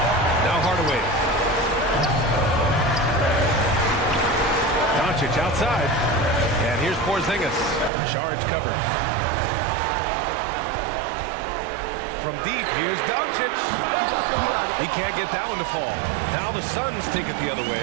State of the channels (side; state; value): left; drops out; at 7.9 s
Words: Now Hardaway. Doncic outside. And here's Porzingis. Saric covered. From deep, here's Doncic. He can't get that one to fall. Now the Suns take it the other